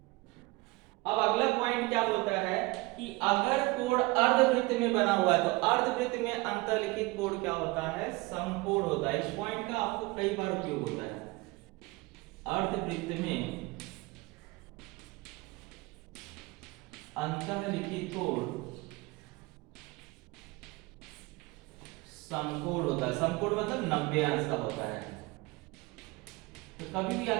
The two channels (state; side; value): quieter; left; 23.1 dB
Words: अब अगला पॉइंट क्या बोलता है कि अगर कोड अर्धवृत्त में बना हुआ है तो अर्धवृत्त में अंतर्लिखित कोड क्या होता है, समकोण होता है। इस पॉइंट का आपको कई बार उपयोग होता है। अर्धवृत्त में अंतर्लिखित कोड समकोण होता है। समकोण मतलब 90 अंश का होता है। तो कभी भी